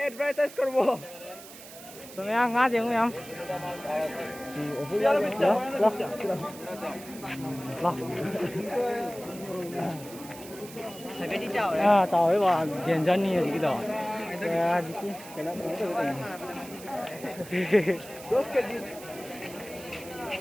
advertise করব semuanya ngajeng yang. Loh. Sampai di jauh À, chào ấy bà tiền dân như gì đó. À, gì cái nó cũng được này. Dos kg.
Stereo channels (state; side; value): noise; right; hiss, 16 dB below the sound